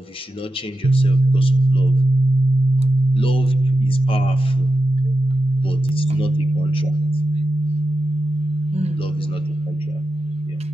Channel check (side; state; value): both; normal; correlation 0.90